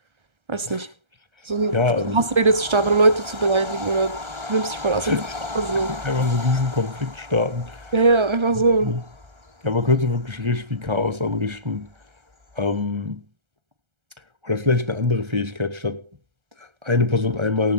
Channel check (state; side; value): late; left; 1.3 ms